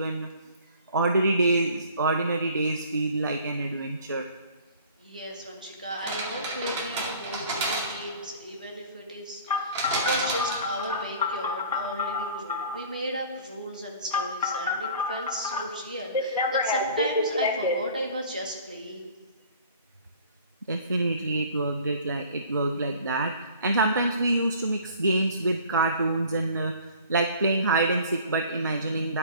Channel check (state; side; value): inverted; both; correlation -0.48